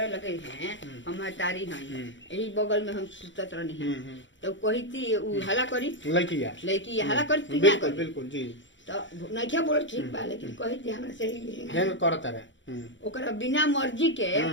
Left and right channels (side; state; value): right; late; 0.54 ms